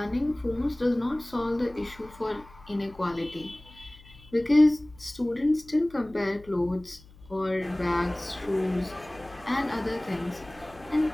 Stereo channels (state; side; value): noise; left; hum, 23 dB below the sound